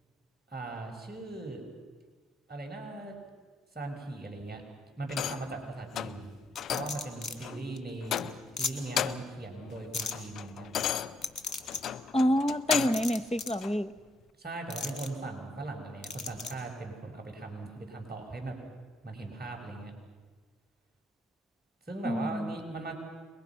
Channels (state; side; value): normal; both; correlation 0.73